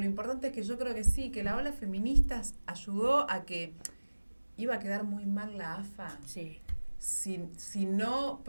importante es que yo creo que sí, que la ola feminista ayudó a que iba a quedar muy mal la AFA. Sí. Si no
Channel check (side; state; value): both; inverted; correlation -1.00